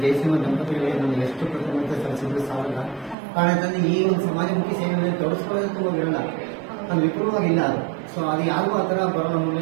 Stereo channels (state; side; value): drops out; left; at 3.2 s